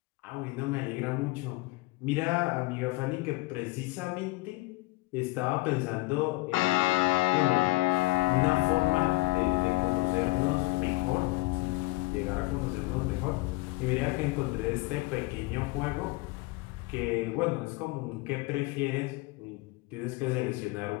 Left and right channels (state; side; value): quieter; right; 21.3 dB